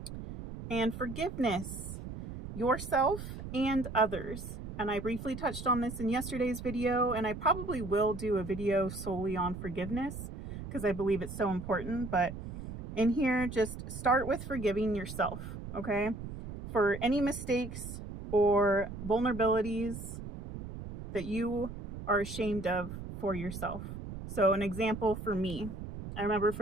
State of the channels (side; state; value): right; noise; rumble, 9 dB below the sound